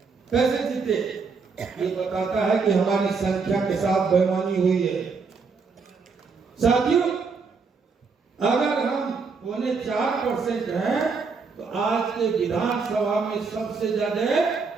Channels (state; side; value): quieter; left; 4.9 dB